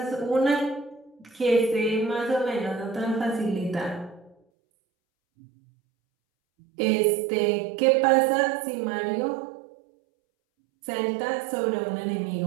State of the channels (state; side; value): drops out; left; at 4.4 s